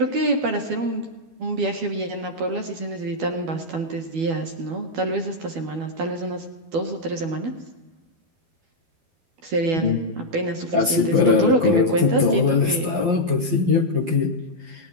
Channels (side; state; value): left; late; 11 ms